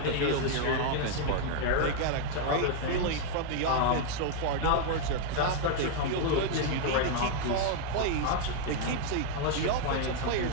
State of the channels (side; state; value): both; different; correlation 0.00